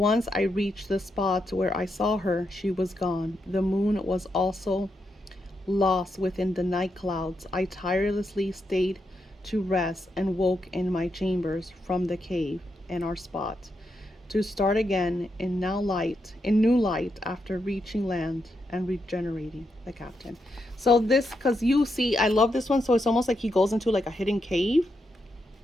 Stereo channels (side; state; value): both; normal; correlation 0.83